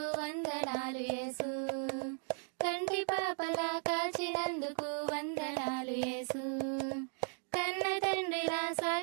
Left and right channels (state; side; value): silent; left; 53 dB below the other